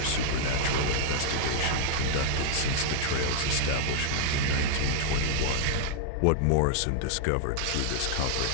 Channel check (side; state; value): both; different; correlation -0.01